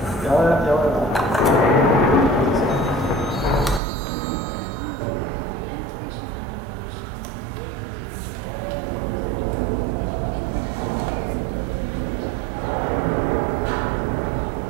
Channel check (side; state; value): left; drops out; at 3.8 s